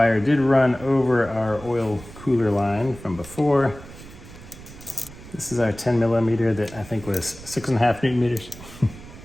did run over our oil cooler line from before. This is our 10 millimeter that I think was 6.5 Newton meters.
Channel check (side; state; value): right; noise; rumble, 17 dB below the sound